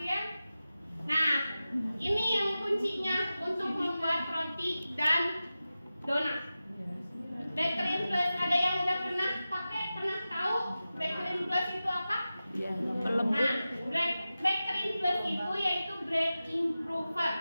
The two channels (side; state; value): both; inverted; correlation -0.94